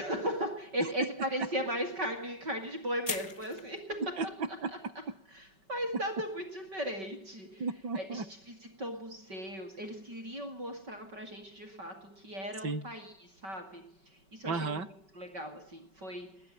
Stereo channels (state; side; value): late; left; 5.2 ms